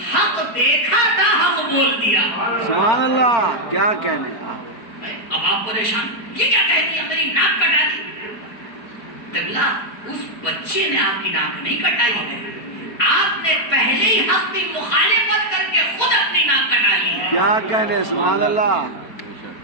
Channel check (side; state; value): right; late; 4.2 ms